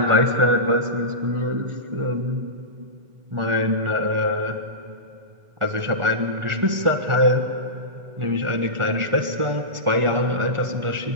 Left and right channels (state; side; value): late; left; 1.4 ms